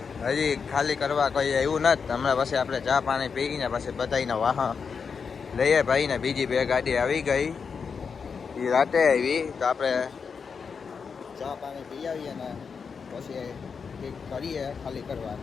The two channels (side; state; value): right; quieter; 5.8 dB